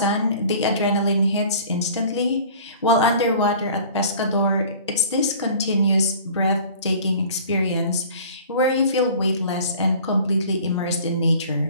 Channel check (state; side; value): inverted; both; correlation -0.46